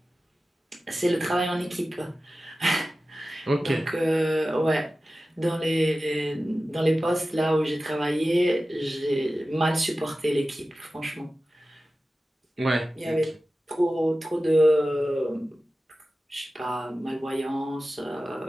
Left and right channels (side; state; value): both; normal; correlation 0.95